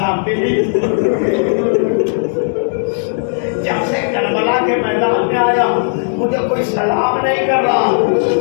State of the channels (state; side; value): silent; right; digital silence